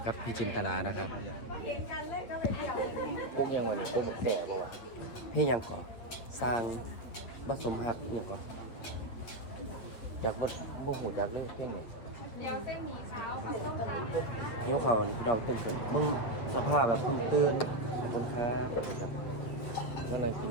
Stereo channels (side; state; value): right; late; 8.7 ms